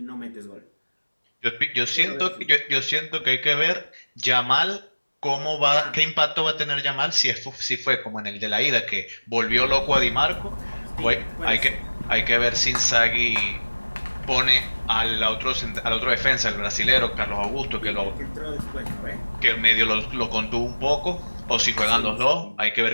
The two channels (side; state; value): both; inverted; correlation -1.00